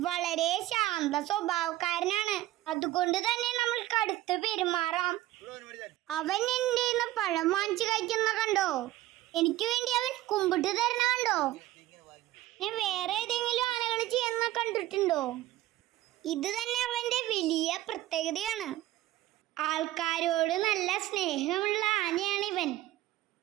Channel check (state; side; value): quieter; left; 15.5 dB